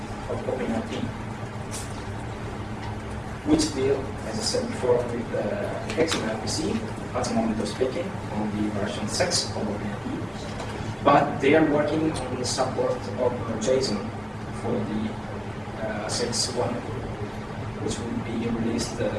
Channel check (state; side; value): identical; both; correlation 1.00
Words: of OpenERP, which deal, as I said before, with XMLRPC at the moment of speaking on the version 6 of OpenERP, but they are working on the support of JSON for the 6.1, which will be released